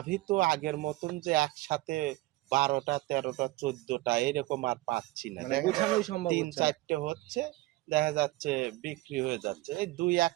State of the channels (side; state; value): left; quieter; 19.5 dB